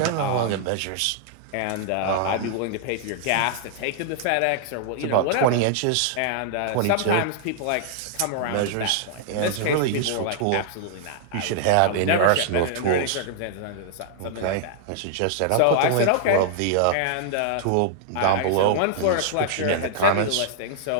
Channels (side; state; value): both; different; correlation -0.01